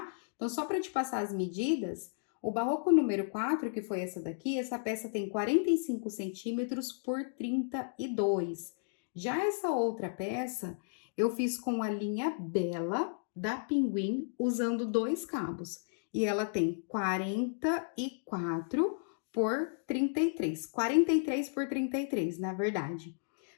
Então, só para te passar as medidas, o barroco número 4, que foi essa daqui, essa peça tem 45 centímetros por 32. Já essa outra peça, eu fiz com a linha Bela da Pinguim, usando 2 cabos. E ela tem 44 por 33. 43 por 33, na verdade.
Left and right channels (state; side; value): silent; right; digital silence